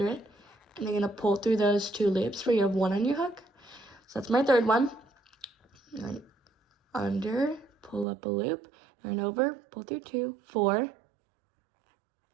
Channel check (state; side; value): drops out; left; at 8.1 s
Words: it. And you're gonna pull through those 2 loops where you have 1 on your hook. So that's my third one. Yarn under, pull up a loop, yarn over, pull through 2, 4,